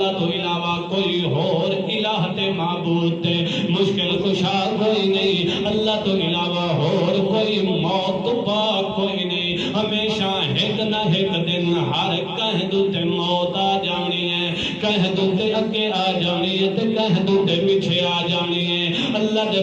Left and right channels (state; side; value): identical; both; correlation 1.00